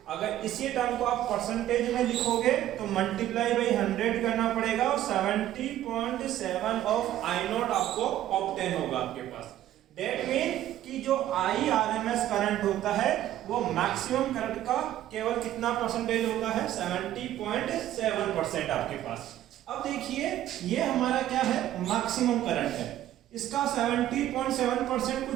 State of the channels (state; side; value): quieter; left; 12.9 dB